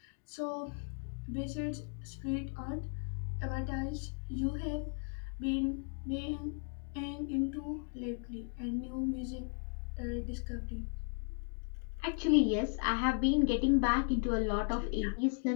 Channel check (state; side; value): silent; right; 54 dB below the other